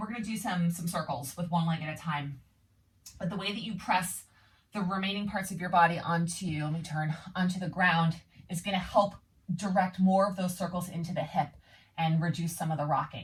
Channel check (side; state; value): both; identical; correlation 1.00